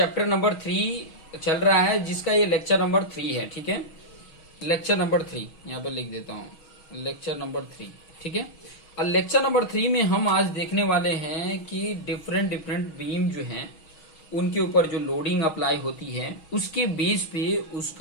नंबर 3 चल रहा है, जिसका ये लेक्चर नंबर 3 है। ठीक है, लेक्चर नंबर 3 यहाँ पे लिख देता हूँ, लेक्चर नंबर 3। ठीक है, और लेक्चर नंबर 3 में हम आज देखने वाले हैं कि डिफरेंट बीम जो हैं उनके ऊपर जो लोडिंग अप्लाई होती है उसके बेस पे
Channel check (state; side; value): late; right; 6.3 ms